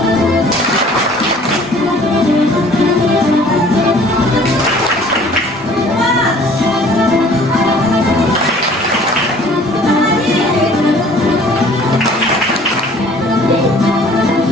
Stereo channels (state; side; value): normal; both; correlation 0.52